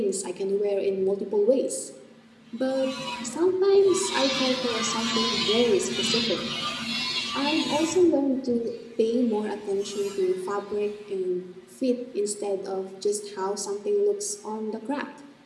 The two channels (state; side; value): identical; both; correlation 1.00